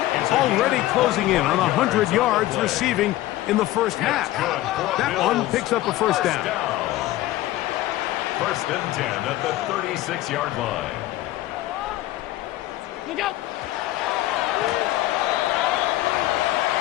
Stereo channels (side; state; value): right; quieter; 15.8 dB